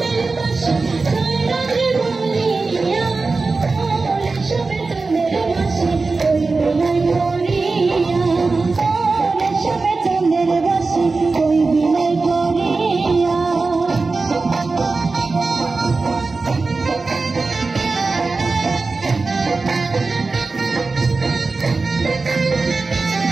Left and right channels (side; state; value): left; quieter; 3.9 dB